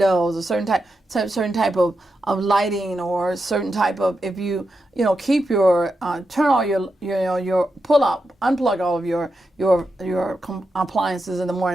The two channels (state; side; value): normal; both; correlation 0.87